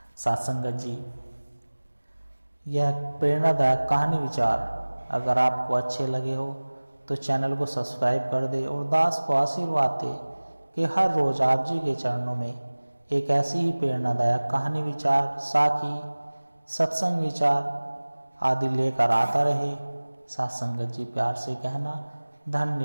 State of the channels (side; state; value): both; inverted; correlation -1.00